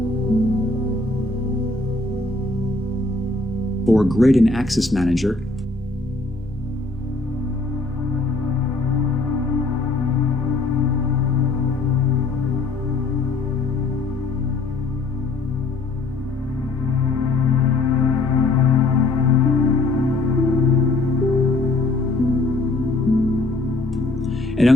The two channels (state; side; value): quieter; right; 3.3 dB